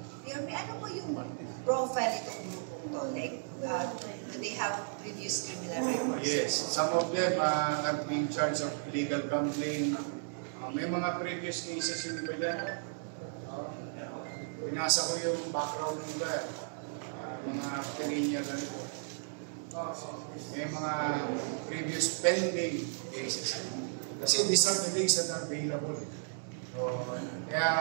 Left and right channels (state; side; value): silent; left; digital silence